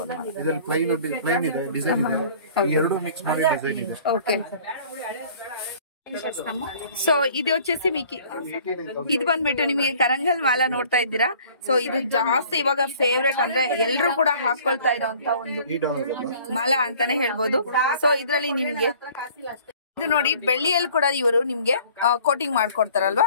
ಇದರಲ್ಲಿ ಪ್ಲೈನ್ ಇದೆ, ಡಿಸೈನ್ ಇದೆ, ಎರಡು ಮಿಕ್ಸ್ ಮಾಡಿ ಡಿಸೈನ್ ಇದೆ. ఓకే. సో ఇది వచ్చేసి మీకు ఇది ಬಂದ್ಬಿಟ್ಟು ನಿಮಗೆ ಕರಂಗಲ್ ಮಾಲಾ ನೋಡ್ತಾ ಇದ್ದೀರಾ. ಸೊ ಇದು ಜಾಸ್ತಿ ಇವಾಗ ಫೇವ್ರೇಟ್ ಅಂದ್ರೆ ಎಲ್ಲರೂ ಕೂಡ ಹಾಕೊಳ್ತಾ ಇರೋಂತ ಒಂದು ಮಾಲಾ ಅಂತಾನೆ ಹೇಳ್ಬೋದು. ಸೊ ಇದ್ರಲ್ಲಿ ನಿಮ್ಗೆ ಇದು ನೋಡಿ, ಬೆಳ್ಳಿಯಲ್ಲಿ ಕೂಡ ಇವರು ನಿಮ್ಗೆ ಕೋಟಿಂಗ್ ಮಾಡ್ಕೊಡ್ತಾರಲ್ವಾ,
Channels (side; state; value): both; inverted; correlation -0.52